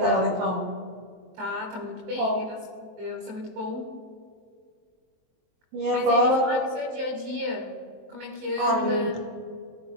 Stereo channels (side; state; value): left; late; 23 ms